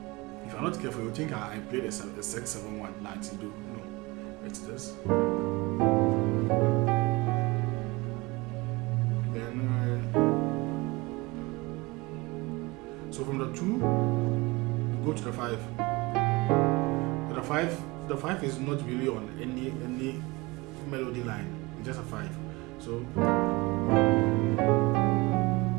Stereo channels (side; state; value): left; quieter; 23.7 dB